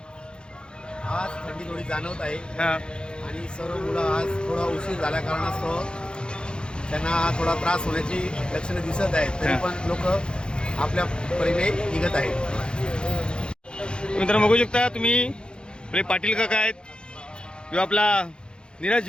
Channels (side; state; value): right; late; 0.050 ms